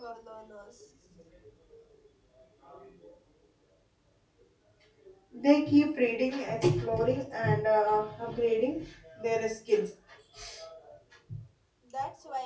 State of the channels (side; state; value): both; identical; correlation 1.00